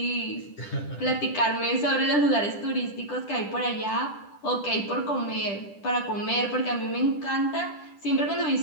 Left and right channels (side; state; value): right; late; 10 ms